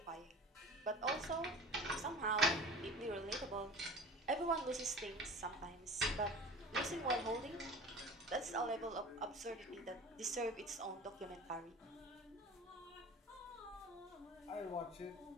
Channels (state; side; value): normal; both; correlation 0.38